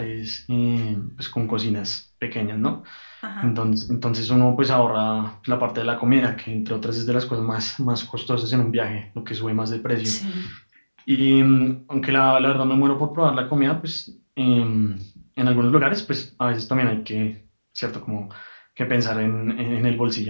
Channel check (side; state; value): both; inverted; correlation -1.00